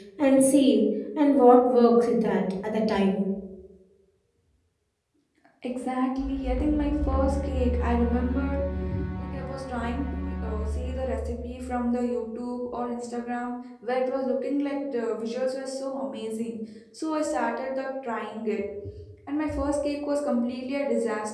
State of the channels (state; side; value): identical; both; correlation 1.00